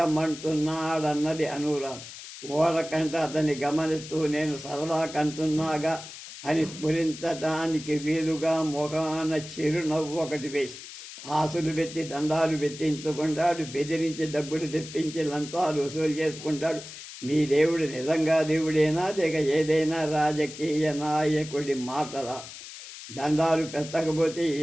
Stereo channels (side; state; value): left; noise; hiss, 13 dB below the sound